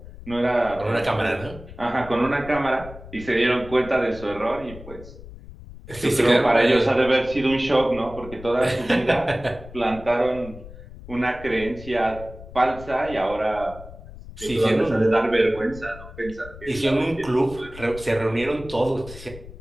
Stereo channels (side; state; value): left; noise; rumble, 16 dB below the sound